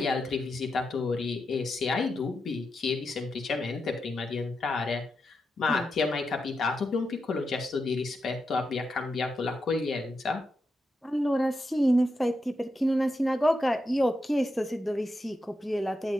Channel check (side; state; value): both; normal; correlation 0.87